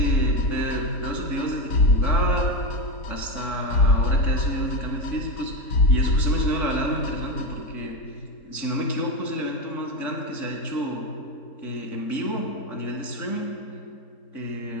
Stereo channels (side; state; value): right; late; 3.6 ms